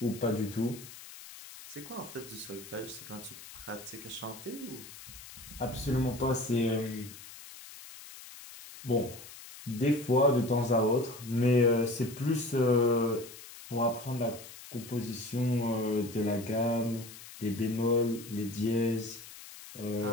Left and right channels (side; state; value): left; noise; hiss, 16 dB below the sound